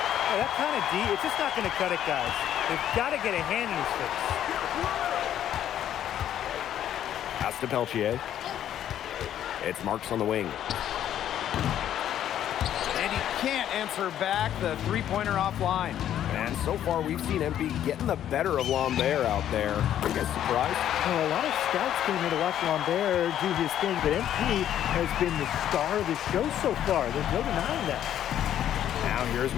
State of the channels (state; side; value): quieter; right; 10.9 dB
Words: Oh, that kind of D, it's just not going to cut it, guys. They've got to get a hand in his face. Pass to Peltier. It's Marks on the wing. And he can't answer back the three-pointer offline. And so far, we've seen MP getting the better of Lambert out there. Are you guys surprised? Well, a lot of scouts came here to watch Lambert do his thing, but MP has been the star of the show so far. There's no denying that. Now here's